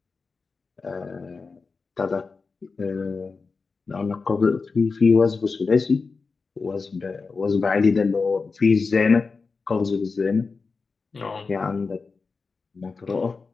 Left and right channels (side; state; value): right; quieter; 4.5 dB